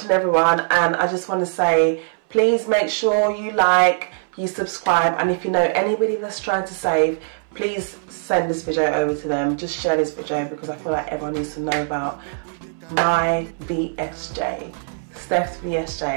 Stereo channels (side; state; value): left; silent; 63 dB below the other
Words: everyone, and I just want to say, please make sure you like, you subscribe, and if you know anybody that's trying to save, please send this video over to them. Just share this video because I feel like everyone needs to know about my VSJ, Steph's